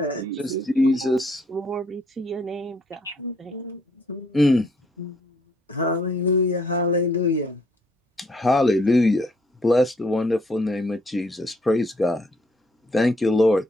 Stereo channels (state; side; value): normal; both; correlation 0.67